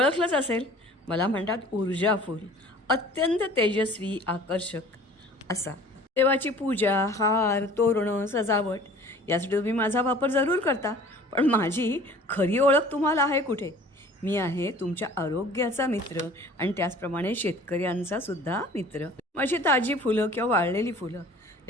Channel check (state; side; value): normal; both; correlation 0.48